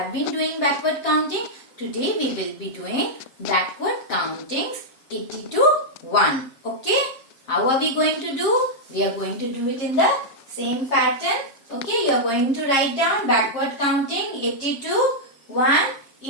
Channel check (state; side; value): late; right; 7.5 ms